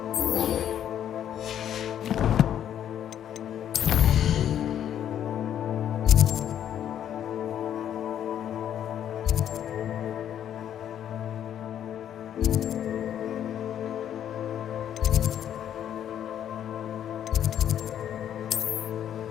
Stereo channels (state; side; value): quieter; right; 10.1 dB